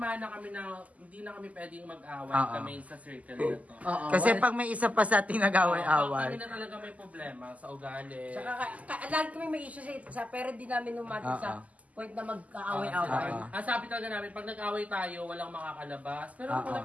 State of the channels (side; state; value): left; late; 0.073 ms